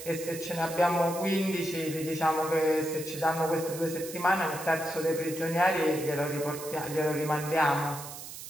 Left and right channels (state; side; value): noise; right; hiss, 11 dB below the sound